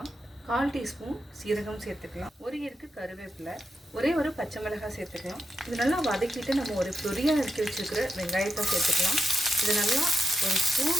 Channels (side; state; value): both; normal; correlation 0.87